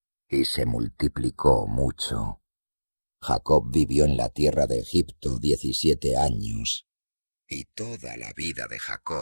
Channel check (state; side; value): inverted; both; correlation -1.00